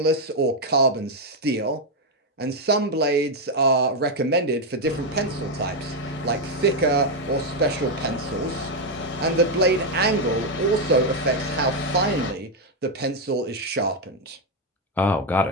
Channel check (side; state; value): both; normal; correlation 0.03